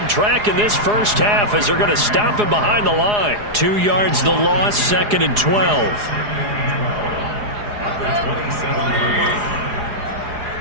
track in this first half as they're going to stop him behind the line. 2 yards the loss, 2nd and 12.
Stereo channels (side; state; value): left; late; 4.8 ms